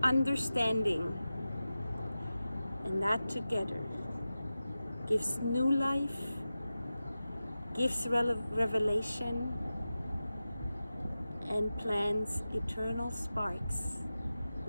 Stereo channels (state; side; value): inverted; both; correlation -0.94